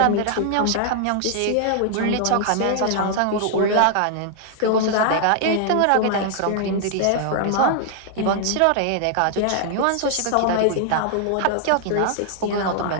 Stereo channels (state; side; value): different; both; correlation 0.00